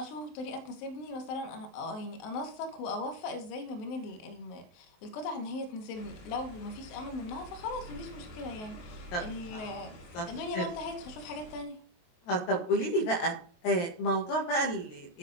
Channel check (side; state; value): right; late; 22 ms